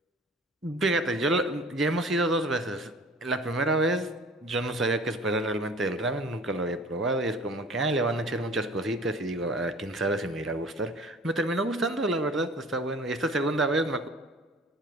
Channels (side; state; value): both; normal; correlation 0.46